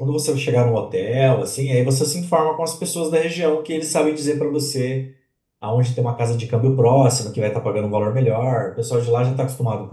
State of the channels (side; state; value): both; identical; correlation 1.00